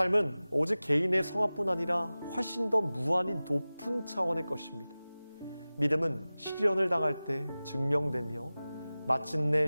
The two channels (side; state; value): both; inverted; correlation -0.97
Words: 오직 개인의 성화뿐 아니라 훨씬 더 무한히 높은 차원의 것입니다. 믿음은 시련을 당할 때 증명되며 마침내